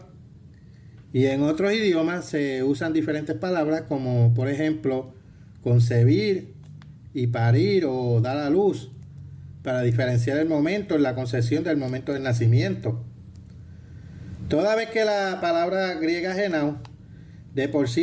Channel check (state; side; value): identical; both; correlation 1.00